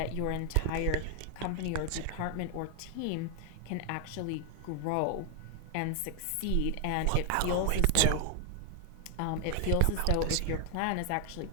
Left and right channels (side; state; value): both; different; correlation 0.00